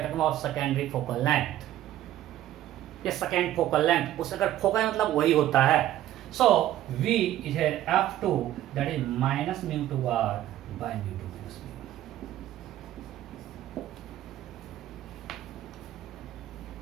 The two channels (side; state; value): left; quieter; 13.2 dB